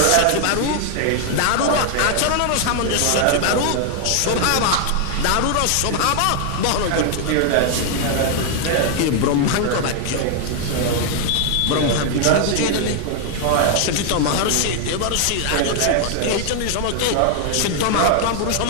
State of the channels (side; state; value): both; different; correlation 0.00